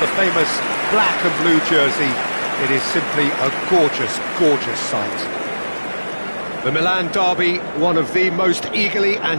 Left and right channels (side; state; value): both; inverted; correlation -1.00